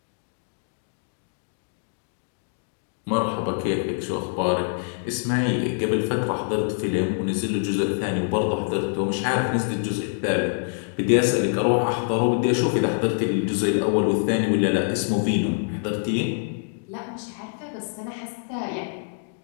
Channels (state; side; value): silent; right; digital silence